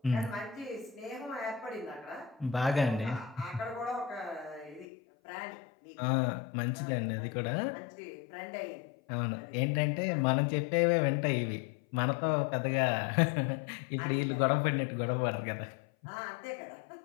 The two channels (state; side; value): drops out; right; at 4.9 s